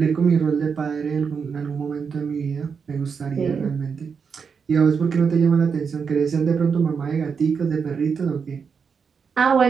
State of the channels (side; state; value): left; quieter; 6.0 dB